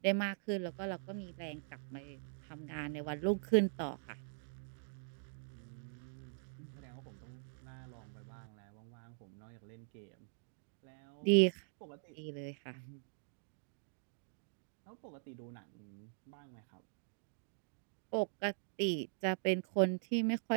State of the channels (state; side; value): silent; left; digital silence